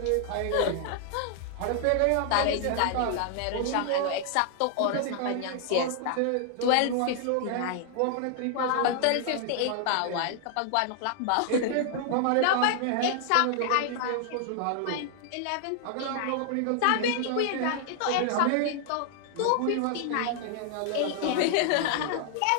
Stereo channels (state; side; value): different; both; correlation 0.00